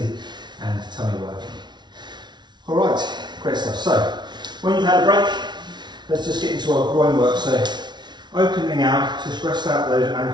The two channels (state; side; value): late; left; 0.21 ms